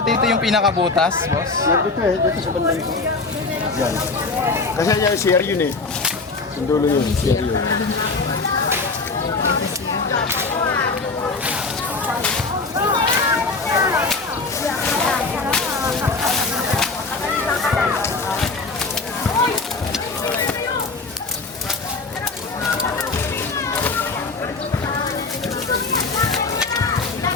dito yung pinakabutas, boss? Dito dito sa banda ito. Yan. Kasi yan, CR yun eh. Yung dulo yun, CR yun.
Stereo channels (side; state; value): right; quieter; 3.9 dB